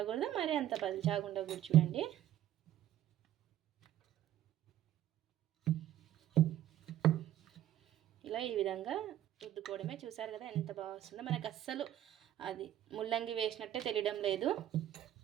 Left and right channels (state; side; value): quieter; left; 12.3 dB